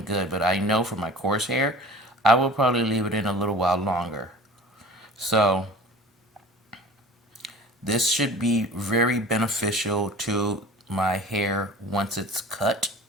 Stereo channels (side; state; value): both; normal; correlation 0.42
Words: good. But I know for my coarse hair, I will probably leave it in a little while longer. So, this should be very beneficial to my hair once it's cut.